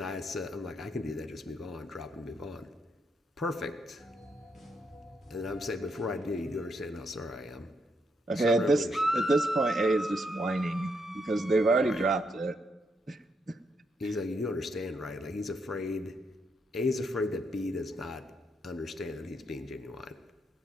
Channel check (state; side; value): normal; both; correlation 0.78